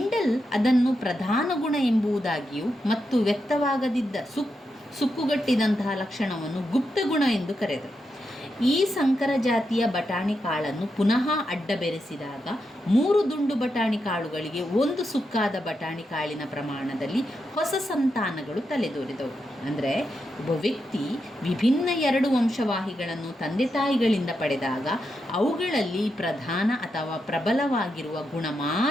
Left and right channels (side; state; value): both; normal; correlation 0.85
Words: ಅದನ್ನು ಪ್ರಧಾನ ಗುಣ ಎಂಬುದಾಗಿಯೂ ಮತ್ತು ವ್ಯಕ್ತವಾಗದಿದ್ದ ಸುಕ್ಕುಗಟ್ಟಿದಂತಹ ಲಕ್ಷಣವನ್ನು ಗುಪ್ತ ಗುಣ ಎಂದು ಕರೆದರು. ಈ ಸಂಕರ ಜಾತಿಯ ಬಟಾಣಿ ಕಾಳನ್ನು ಪುನಃ ಅಡ್ಡ ಬೆರೆಸಿದಾಗ 3 ದುಂಡು ಬಟಾಣಿ ಕಾಳುಗಳಿಗೆ 1 ಸುಕ್ಕಾದ ಬಟಾಣಿ ಕಾಳಿನ ಪ್ರಮಾಣದಲ್ಲಿ ಹೊಸ ಸಂತಾನಗಳು ತಲೆದೋರಿದವು. ಅಂದರೆ ಒಬ್ಬ ವ್ಯಕ್ತಿ ವಿಭಿನ್ನ 2 ವಂಶವಾಹಿಗಳನ್ನು ತಂದೆ ತಾಯಿಗಳಿಂದ ಪಡೆದಾಗ ಅವುಗಳಲ್ಲಿ ಪ್ರಧಾನ ಅಥವಾ ಪ್ರಬಲವಾಗಿರುವ ಗುಣ